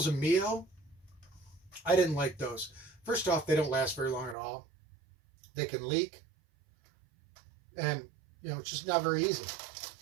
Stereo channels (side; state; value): left; drops out; at 4.4 s